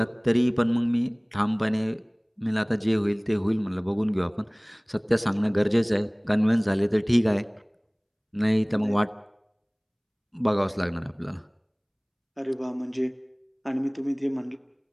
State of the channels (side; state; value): both; identical; correlation 1.00